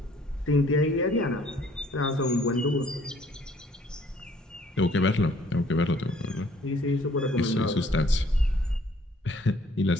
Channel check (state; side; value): normal; both; correlation 0.60